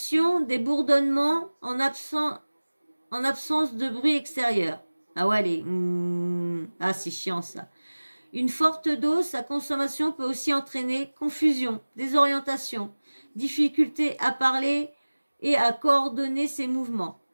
des bourdonnements en absence de bruit extérieur. Ah ouais, ah c'est chiant ça. Une forte dose, sa consommation peut aussi entraîner confusion, désorientation, difficulté à parler et à coordonner ses mouvements,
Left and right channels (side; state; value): both; inverted; correlation -1.00